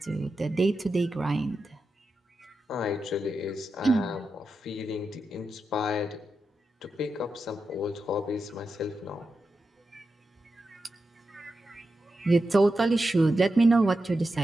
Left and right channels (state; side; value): normal; both; correlation 0.89